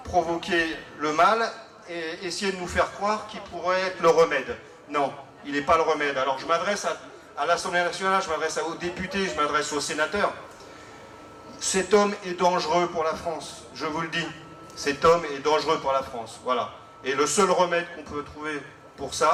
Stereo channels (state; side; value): identical; both; correlation 1.00